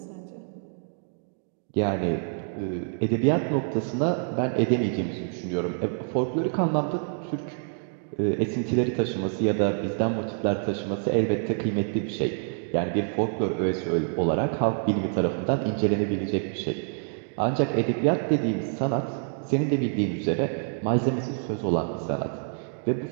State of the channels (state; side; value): silent; left; 60 dB below the other